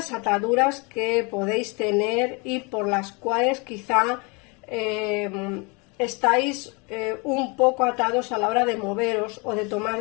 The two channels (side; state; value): right; quieter; 30.4 dB